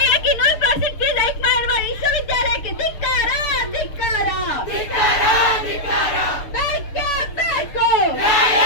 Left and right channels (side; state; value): right; late; 6.6 ms